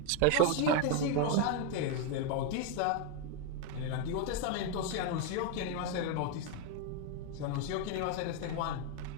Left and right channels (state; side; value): different; both; correlation 0.01